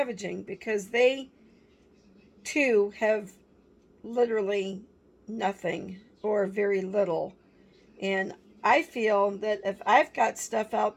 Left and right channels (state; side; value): identical; both; correlation 1.00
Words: because they too have literally nothing or very little. And I feel that if I've got stuff